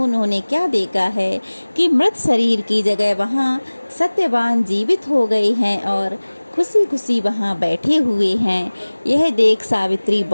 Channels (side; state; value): both; inverted; correlation -1.00